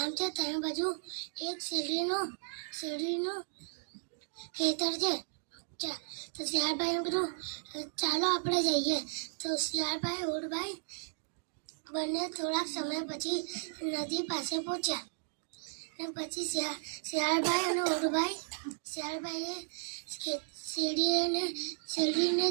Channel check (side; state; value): left; silent; digital silence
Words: છે. ત્રણ બાજુ એક શેરડીનો ખેતર છે. તો શિયાળભાઈએ કીધું ચાલો આપણે જઈએ. તો શિયાળભાઈ ઊંટભાઈ બંને થોડાક સમય પછી નદી પાસે પહોંચ્યા. અને પછી શિયાળભાઈ અને શિયાળભાઈએ શેરડીને